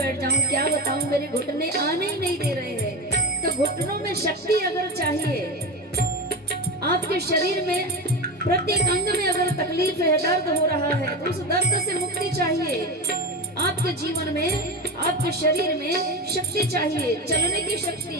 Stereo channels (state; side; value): normal; both; correlation 0.21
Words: जाऊं क्या बताऊं मेरे घुटने आने ही नहीं दे रहे हैं तो घुटनों में शक्ति अगर चाहिए आपके शरीर में प्रत्येक अंग में अगर तकलीफ है दर्द हो रहा है तो उस दर्द से मुक्ति चाहिए आपके जीवन में आपके शरीर में शक्ति चाहिए चलने की शक्ति